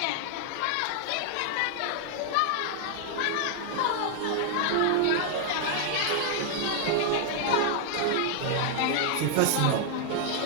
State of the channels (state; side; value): different; both; correlation 0.00